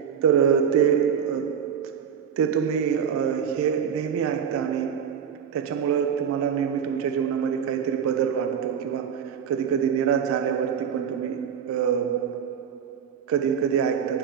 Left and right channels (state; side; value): quieter; left; 7.8 dB